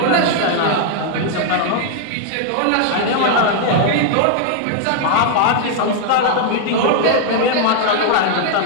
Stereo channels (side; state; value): both; different; correlation 0.00